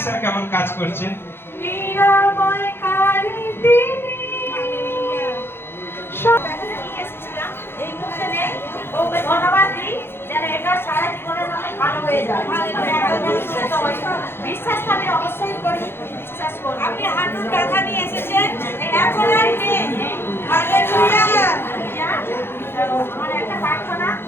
কেমন কাজ করছে? নিরাময়কারী তিনি। এই মুহূর্তে নেই, ওকে ধন্যবাদ দিই যেন এটা সারা জীবনের জন্য ভালো হয়ে যায়। বিশ্বাস আমি অবশ্যই করি, বিশ্বাস করি। আপনি হাঁটুর ব্যথা নিয়ে এসেছেন, এখন আর নেই। হালেলুয়া! আমার একটা প্রার্থনা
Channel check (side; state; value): right; late; 0.11 ms